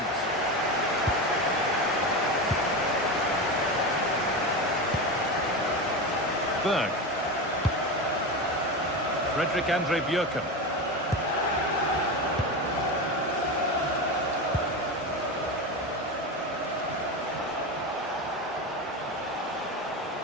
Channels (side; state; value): both; normal; correlation 0.20